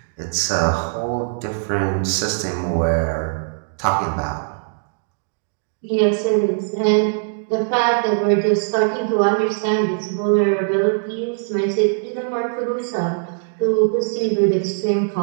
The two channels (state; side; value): silent; left; digital silence